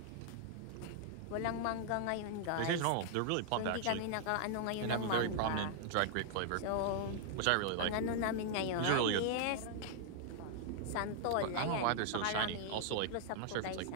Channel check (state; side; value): different; both; correlation -0.01